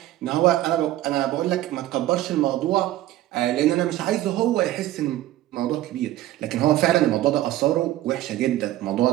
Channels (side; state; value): left; quieter; 14.5 dB